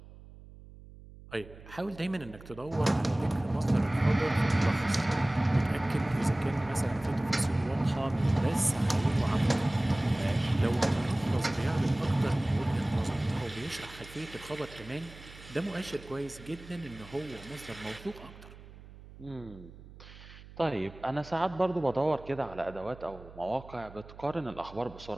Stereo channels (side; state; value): right; noise; hum, 18 dB below the sound